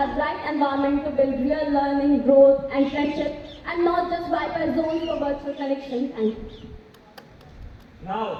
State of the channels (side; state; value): both; identical; correlation 1.00